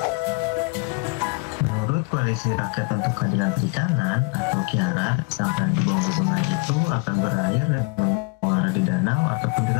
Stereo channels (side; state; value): right; quieter; 30.6 dB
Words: Menurut Koalisi Rakyat untuk Keadilan Perikanan atau KIARA, sampah yang dibuang ke sungai itu akan berair dan menguara di danau ataupun di